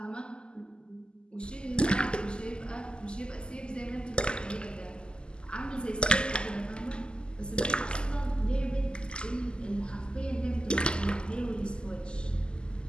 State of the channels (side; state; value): right; late; 0.048 ms